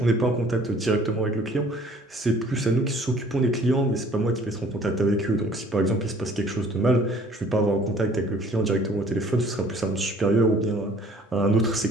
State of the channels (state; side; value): normal; both; correlation 0.54